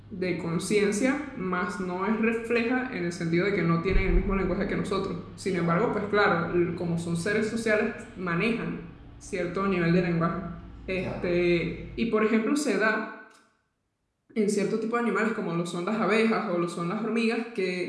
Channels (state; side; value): identical; both; correlation 1.00